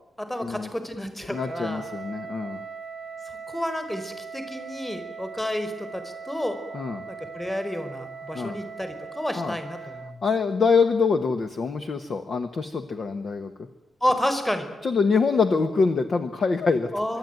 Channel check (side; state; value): right; quieter; 3.2 dB